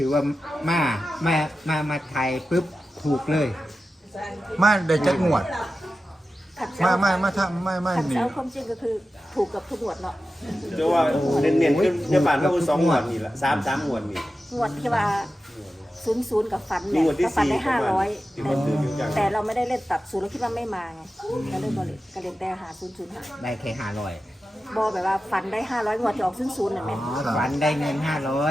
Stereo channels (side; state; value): both; normal; correlation 0.93